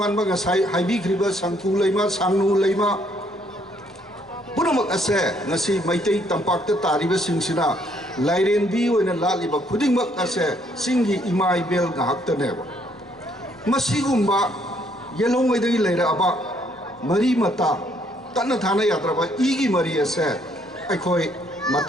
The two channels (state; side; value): normal; both; correlation 0.68